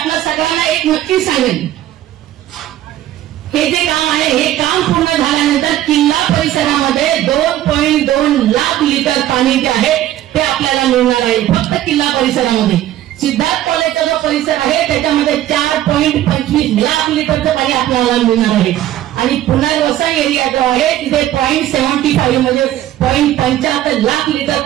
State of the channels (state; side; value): quieter; left; 13.1 dB